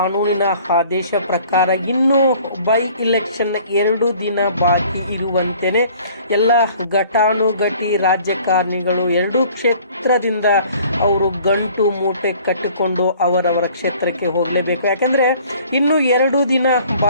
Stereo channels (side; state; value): both; inverted; correlation -0.53